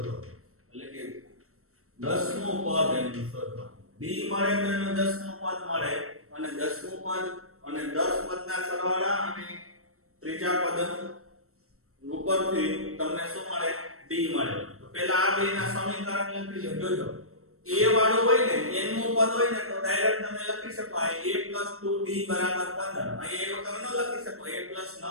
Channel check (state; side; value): late; left; 0.63 ms